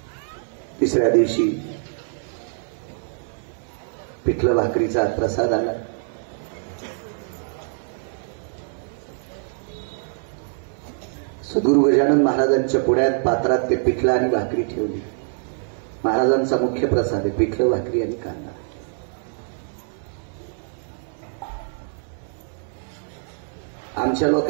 तिसऱ्या दिवशी पिठलं भाकरीचा प्रसाद आला. सद्गुरू गजानन महाराजांच्या पुढ्यात पात्रात ते पिठलं आणि भाकरी ठेवली. महाराजांचा मुख्य प्रसाद आहे पिठलं भाकरी आणि कांदा. आमच्या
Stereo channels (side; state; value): left; silent; 59 dB below the other